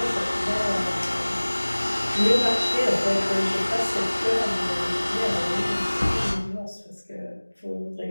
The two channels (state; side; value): inverted; both; correlation -1.00